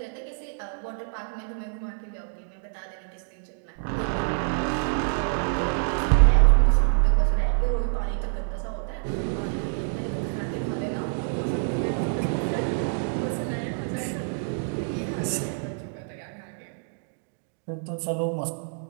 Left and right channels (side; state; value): left; silent; digital silence